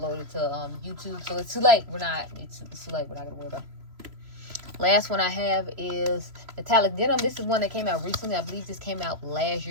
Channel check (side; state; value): left; late; 3.0 ms